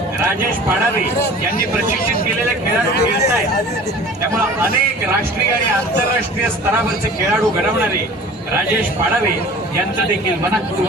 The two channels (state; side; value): normal; both; correlation 0.44